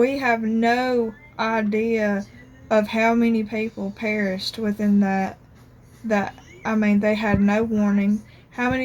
have no idea of how many people perished within that I mean, they had no warning. How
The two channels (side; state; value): both; identical; correlation 1.00